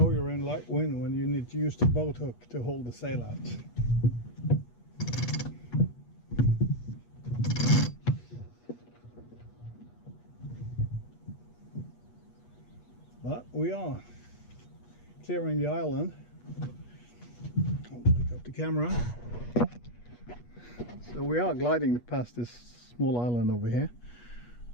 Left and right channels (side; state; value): right; late; 8.3 ms